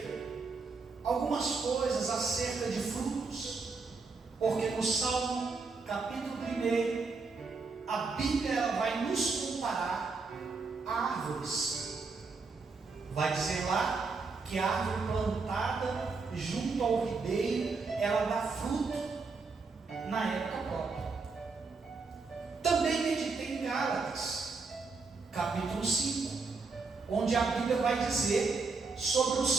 algumas coisas acerca de frutos, porque no Salmo capítulo 1, a Bíblia ela vai nos comparar a árvores. Vai dizer lá que a árvore plantada junto ao ribeiro, ela dá fruto na época própria. Também meditei em Gálatas, capítulo 5, onde a Bíblia vai dizer sobre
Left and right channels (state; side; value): quieter; left; 4.3 dB